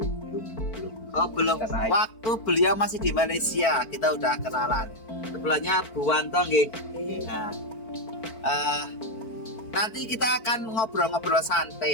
belum. Oh belum. Waktu beliau masih di Malaysia kita udah kenalan. Sebelahnya Bu Wanto nggih. Nah, nanti kita akan ngobrol-ngobrol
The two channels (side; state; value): right; late; 4.5 ms